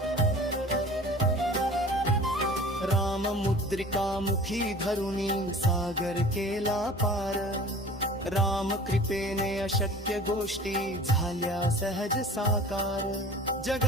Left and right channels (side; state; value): both; normal; correlation 0.42